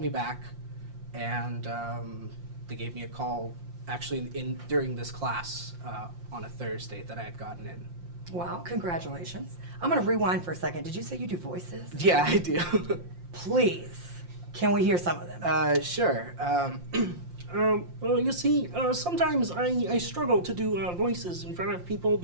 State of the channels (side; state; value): left; late; 5.7 ms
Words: back, and they gave me a call actually during this class on a Thursday that I had gotten in. Wow, congratulations. I'm going to rewind for a second. Did you say you do voices? Yeah, I do. Please, can we hear some of them? Sure. Well, you see, sometimes I struggle to do voices in front of people